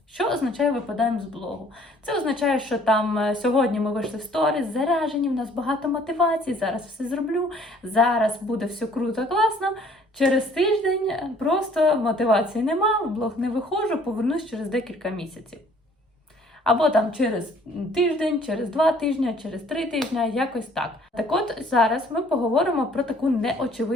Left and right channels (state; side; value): normal; both; correlation 0.57